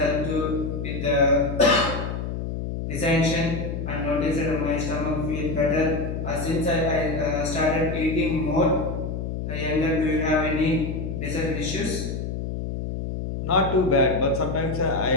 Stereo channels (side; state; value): left; noise; hum, 4 dB below the sound